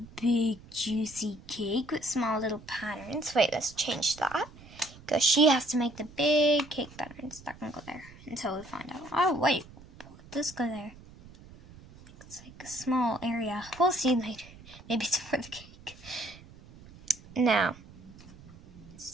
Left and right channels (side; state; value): right; noise; rumble, 20 dB below the sound